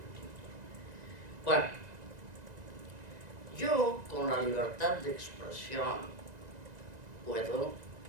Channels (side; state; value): left; late; 1.9 ms